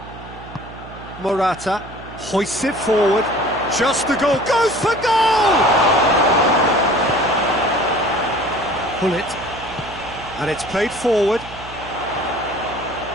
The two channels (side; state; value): right; noise; hum, 16 dB below the sound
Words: Morata hoists it forward. Just the goal. Goes for goal! Pull it. And it's played forward.